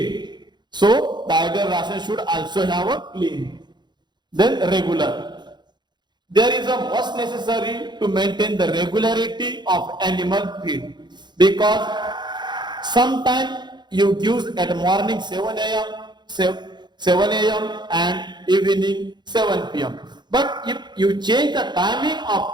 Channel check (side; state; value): left; late; 0.21 ms